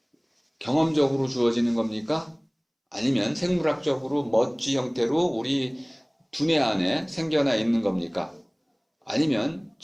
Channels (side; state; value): both; identical; correlation 1.00